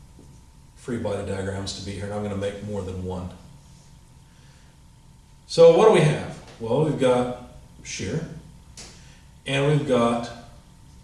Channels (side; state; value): both; identical; correlation 1.00